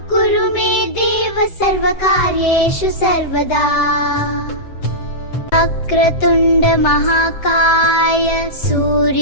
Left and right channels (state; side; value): late; right; 7.8 ms